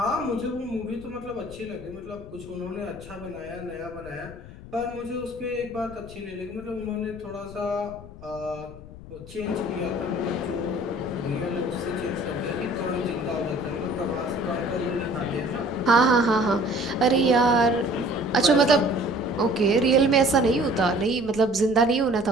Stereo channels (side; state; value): left; noise; rumble, 16 dB below the sound